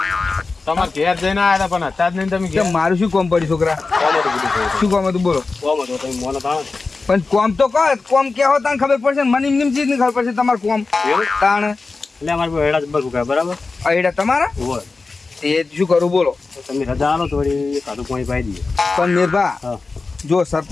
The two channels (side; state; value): right; quieter; 4.0 dB